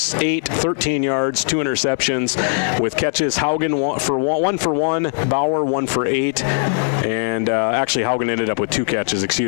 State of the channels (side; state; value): right; silent; digital silence